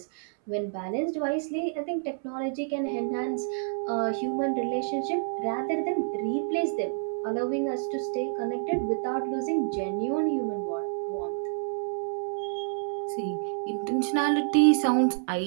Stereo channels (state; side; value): silent; left; 59 dB below the other